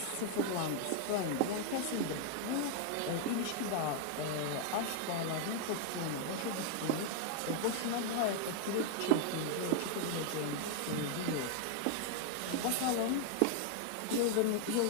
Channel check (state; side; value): different; both; correlation 0.00